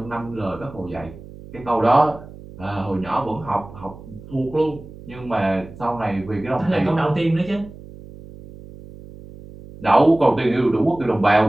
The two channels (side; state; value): right; noise; hum, 17 dB below the sound